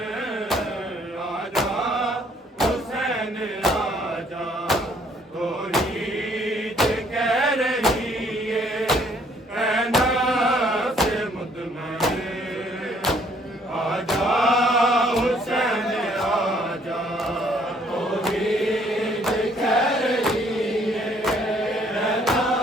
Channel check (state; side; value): normal; both; correlation 0.63